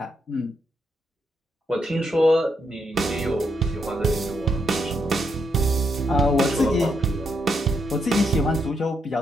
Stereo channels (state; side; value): normal; both; correlation 0.79